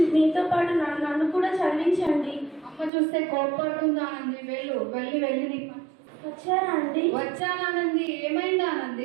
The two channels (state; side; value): drops out; left; at 2.9 s